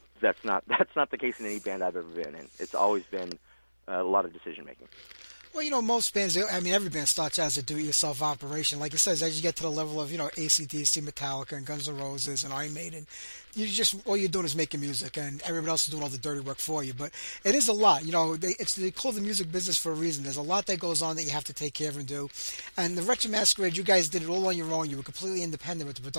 That's not the case in any band I've ever been in. It's always been a lot of decision making. Well, most bands, I mean, every band starts out as a do-it-yourself operation. Like it says, as you get to the level of, AC/DC, Metallica, and Guns N' Roses, and Iron Maiden, all you're doing is making music, and everybody else is doing all the dirty work for you. But it is a lot. They call the music business for a reason. There's a lot that goes on that you have to take care of and do. And the Wretched Masquerade, you guys did it all on your own. You were completely independent with the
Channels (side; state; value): both; inverted; correlation -0.99